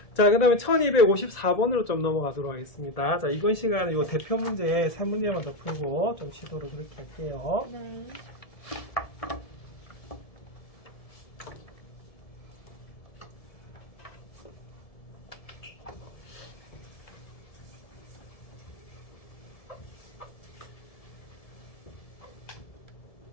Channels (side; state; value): right; late; 1.7 ms